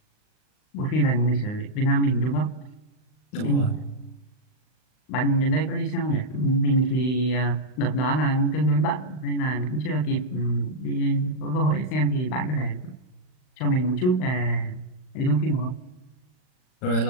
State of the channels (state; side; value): late; right; 39 ms